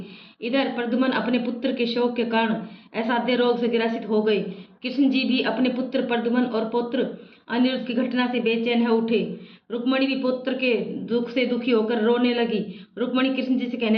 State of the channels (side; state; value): both; identical; correlation 1.00